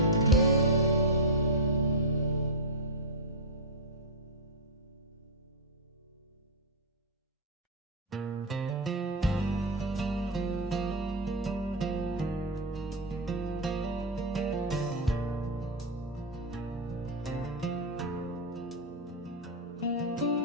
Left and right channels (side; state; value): both; normal; correlation 0.00